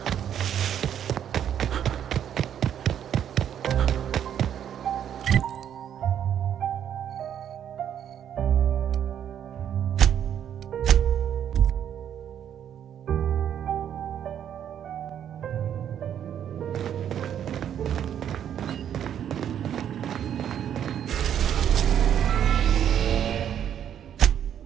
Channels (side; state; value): left; quieter; 9.6 dB